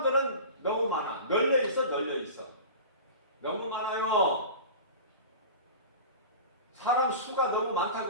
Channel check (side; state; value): both; inverted; correlation -0.35